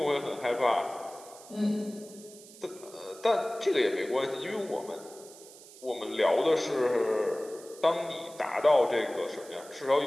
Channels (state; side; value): noise; right; hiss, 19 dB below the sound